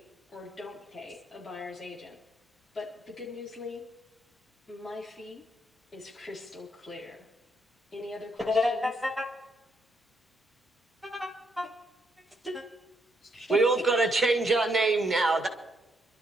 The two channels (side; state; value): both; normal; correlation 0.75